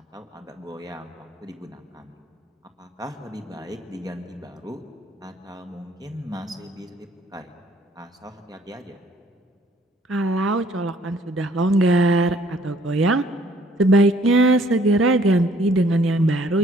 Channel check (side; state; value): both; normal; correlation 0.61